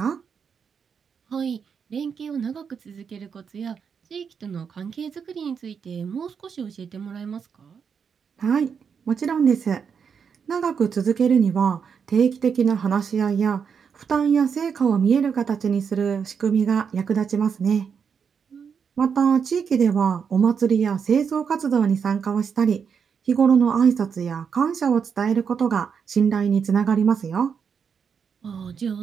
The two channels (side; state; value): left; quieter; 6.6 dB